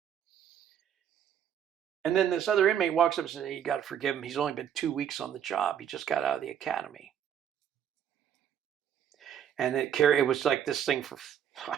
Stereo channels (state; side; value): quieter; left; 9.2 dB